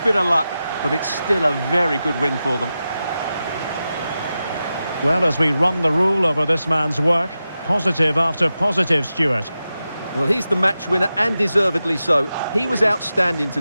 bit of luck. But it's still a very good win for them. Well, as we run the rule over this man's work, positive after positive, Stuart. Well, he's the match winner, and deservedly so. He was outstanding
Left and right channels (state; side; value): inverted; both; correlation -0.92